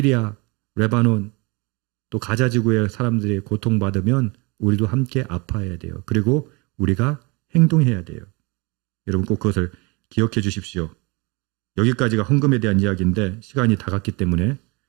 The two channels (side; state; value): left; quieter; 28.1 dB